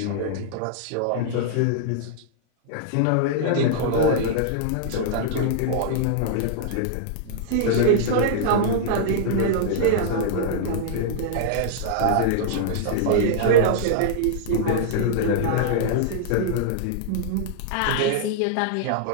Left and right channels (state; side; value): different; both; correlation -0.01